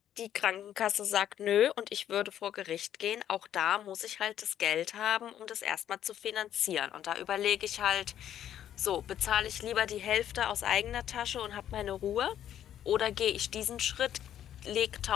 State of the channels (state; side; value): quieter; right; 10.7 dB